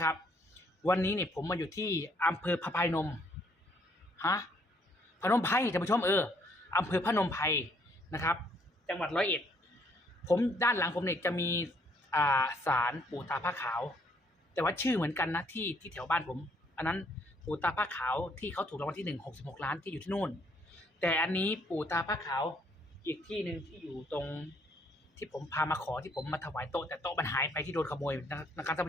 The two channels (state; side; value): normal; both; correlation 0.67